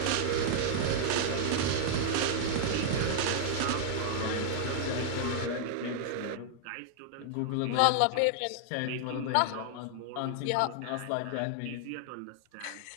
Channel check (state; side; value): different; both; correlation -0.01